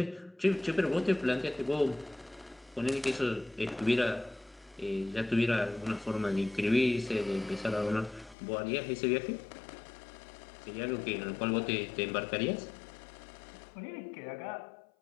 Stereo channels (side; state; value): right; drops out; at 8.3 s